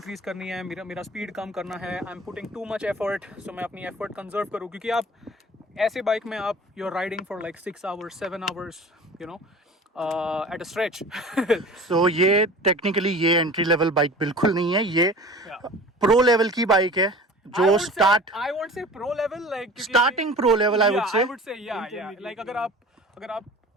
करनी है, मेरा स्पीड कम करना है, I am putting too much effort, so मैं अपनी एफर्ट कंजर्व करूँ क्योंकि आप ऐसे बाइक में आप you are riding for like 6 hours 7 hours at a stretch. So ये टेक्निकली ये एंट्री लेवल बाइक बिल्कुल नहीं है, ये प्रो लेवल की बाइक है जो I won't say pro level like starting pro level I yeah, would say. yeah like अगर आप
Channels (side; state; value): both; normal; correlation 0.40